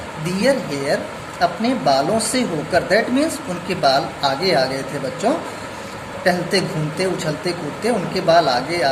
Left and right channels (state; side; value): identical; both; correlation 1.00